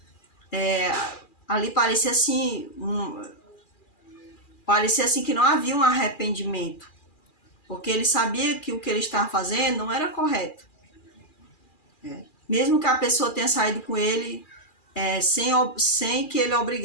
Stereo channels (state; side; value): late; right; 2.4 ms